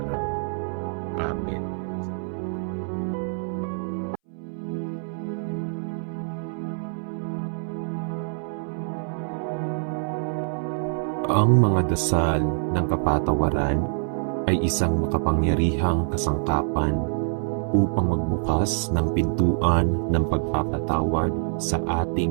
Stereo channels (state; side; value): silent; left; 62 dB below the other